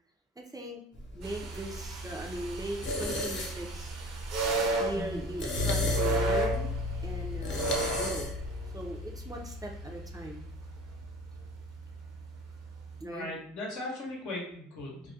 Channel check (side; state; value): both; normal; correlation 0.42